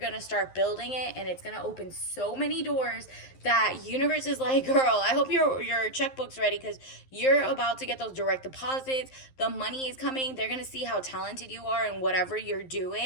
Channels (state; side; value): late; right; 11 ms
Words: start building it, and it's gonna open so many doors that universe is like, girl, I hope your checkbook's ready, because you're about to get those direct deposits. The money is coming. They're gonna see how talented you are in whatever you're